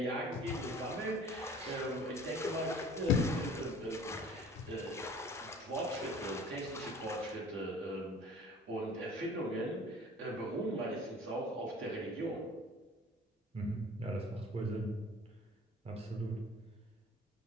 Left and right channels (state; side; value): normal; both; correlation 0.47